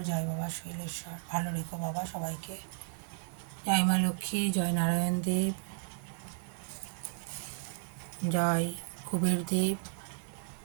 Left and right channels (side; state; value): left; silent; 55 dB below the other